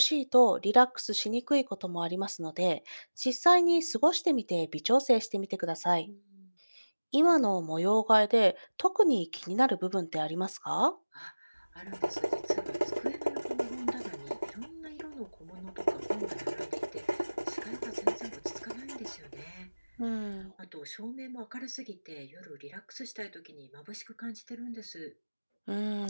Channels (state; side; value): inverted; both; correlation -1.00